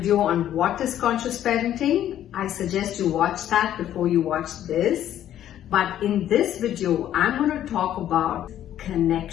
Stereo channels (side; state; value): right; quieter; 11.5 dB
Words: on what is conscious parenting, I suggest you watch that before you watch this. But in this video, I'm going to talk about